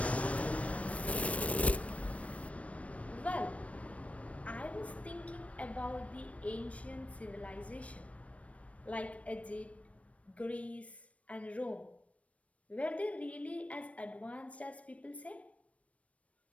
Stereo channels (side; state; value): right; late; 0.064 ms